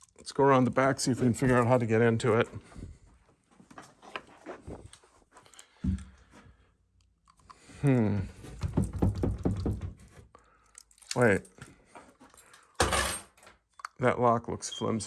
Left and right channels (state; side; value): identical; both; correlation 1.00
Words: go around the back, see if we can figure out how to get into it. Wait. That lock looks